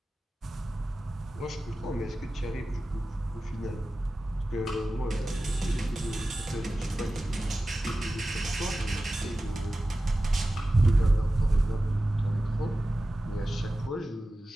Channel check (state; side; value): normal; both; correlation 0.95